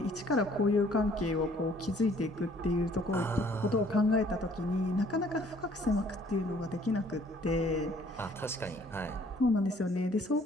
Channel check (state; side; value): normal; both; correlation 0.59